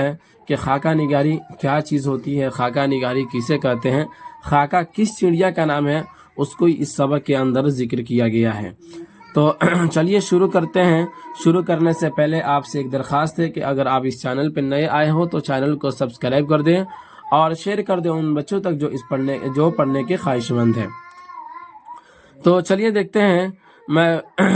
कि खाका निगारी क्या चीज़ होती है, खाका निगारी किसे कहते हैं, खाका किस चिड़िया का नाम है, उसको इस सबक के अंदर जिक्र किया गया है। तो चलिए शुरू करते हैं। शुरू करने से पहले आपसे एक दरख्वास्त है कि अगर आप इस चैनल पर नए आए हो तो चैनल को सब्सक्राइब कर दें और शेयर कर दें उन बच्चों तक जो पढ़ने के ख्वाहिशमंद हैं। तो चलिए देखते हैं।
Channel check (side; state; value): both; identical; correlation 1.00